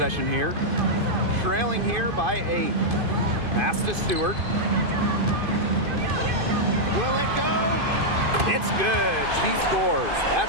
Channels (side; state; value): left; late; 2.5 ms